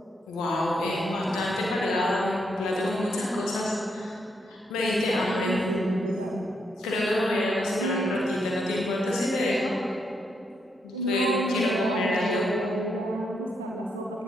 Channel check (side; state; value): both; normal; correlation 0.79